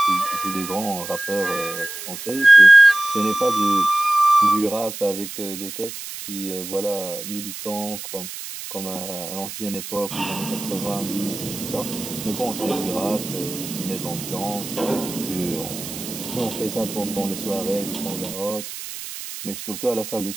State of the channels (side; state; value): right; noise; hiss, 10 dB below the sound